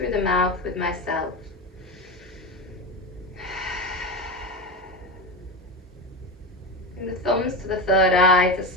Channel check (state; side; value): normal; both; correlation 0.19